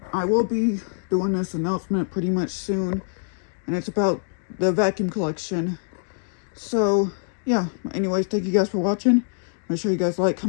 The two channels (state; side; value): silent; right; digital silence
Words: will be doing this announcement pretty much soon, and it's about the vacuum collection. So yeah, anyways, thank you guys for watching. Make sure you guys like,